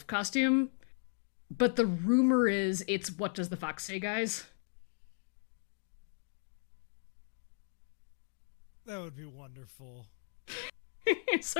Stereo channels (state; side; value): silent; right; digital silence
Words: costume, but the rumor is it's What Does the Fox Say, guys? That would be wonderful.